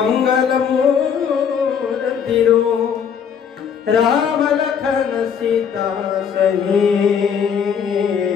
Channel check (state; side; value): quieter; right; 7.4 dB